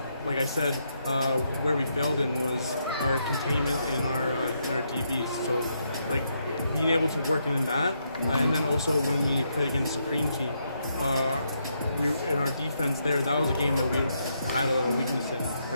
like I said, where we failed in was our containment in our DBs. So, like, being able to work in that, and then also when we played against Supreme team, we in our defense there, that was a game that we had a weakness in,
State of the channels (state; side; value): inverted; both; correlation -0.79